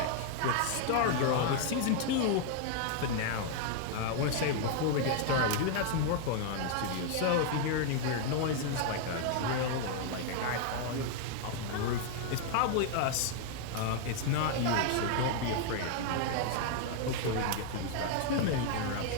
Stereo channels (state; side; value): different; both; correlation 0.00